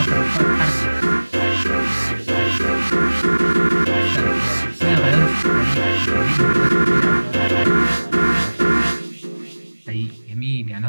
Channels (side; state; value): both; inverted; correlation -1.00